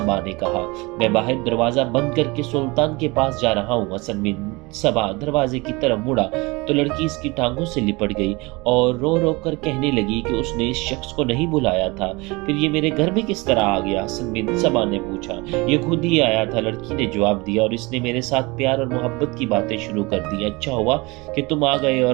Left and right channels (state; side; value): quieter; left; 24.8 dB